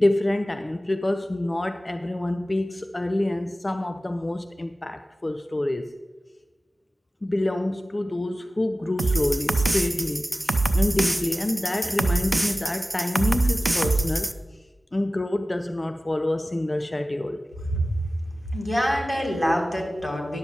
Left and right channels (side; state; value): both; normal; correlation 0.96